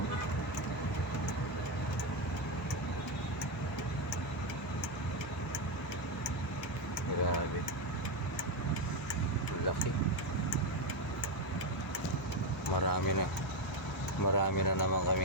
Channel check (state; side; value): normal; both; correlation 0.08